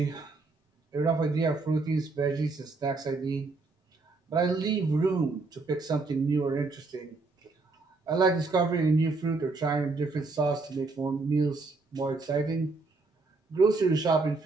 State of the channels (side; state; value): left; quieter; 3.7 dB